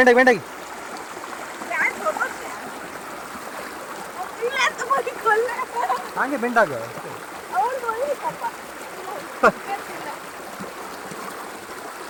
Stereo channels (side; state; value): both; identical; correlation 1.00